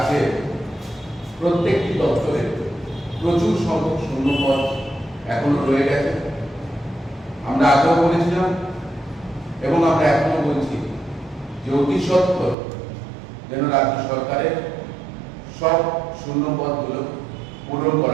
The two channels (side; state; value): left; drops out; at 12.6 s